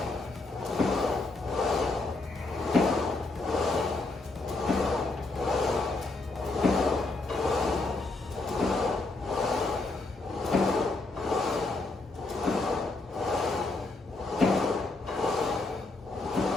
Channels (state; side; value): quieter; right; 3.3 dB